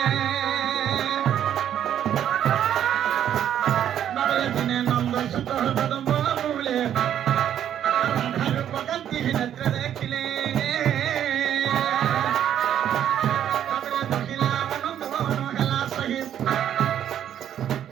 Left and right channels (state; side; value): quieter; left; 10.2 dB